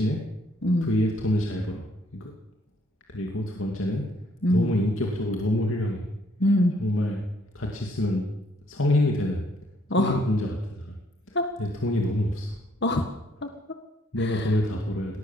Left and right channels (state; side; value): normal; both; correlation 0.67